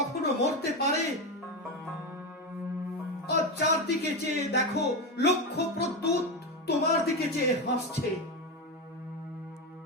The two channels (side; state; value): both; normal; correlation 0.14